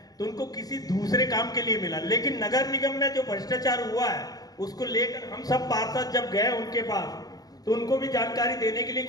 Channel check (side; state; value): right; late; 0.18 ms